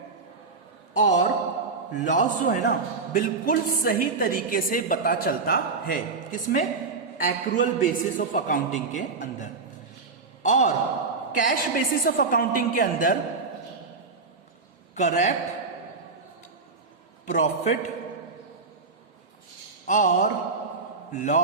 और लॉस जो है ना, बिल्कुल सही तरीके से पता चलता है। किसमें? एक्रूअल बेसिस ऑफ अकाउंटिंग के अंदर। और कैश बेसिस ऑफ अकाउंटिंग के अंदर करेक्ट प्रॉफिट और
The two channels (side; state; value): left; quieter; 4.3 dB